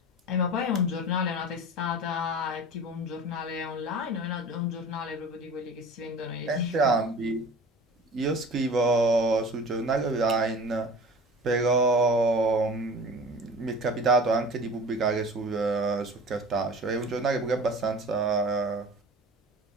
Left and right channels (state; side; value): normal; both; correlation 0.40